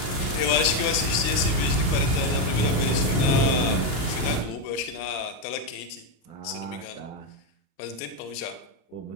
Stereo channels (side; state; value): right; late; 36 ms